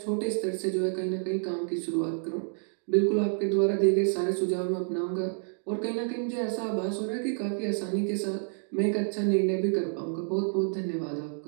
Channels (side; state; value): left; silent; 59 dB below the other